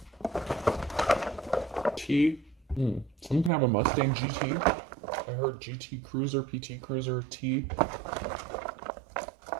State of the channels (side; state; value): left; drops out; at 3.5 s